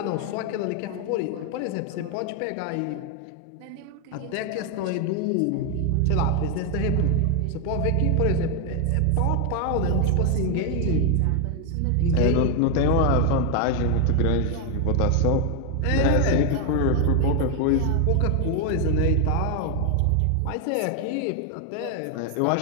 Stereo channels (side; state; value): both; different; correlation 0.01